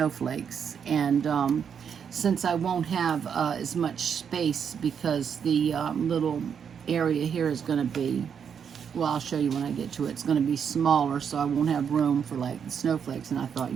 And since I won't have as much space, because the little area here is going to be, well, I'll show you when I get to it. It's going to be smaller, so I won't have room for like the snowflakes. And I thought,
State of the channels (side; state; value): left; quieter; 7.4 dB